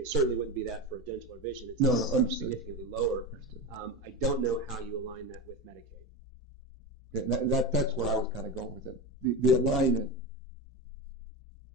certainly wouldn't be that for dental or vision. It's significantly lower. I don't know how you align that with Medicaid. Okay, that's where I was kind of going with it. The alignment,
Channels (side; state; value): both; normal; correlation 0.19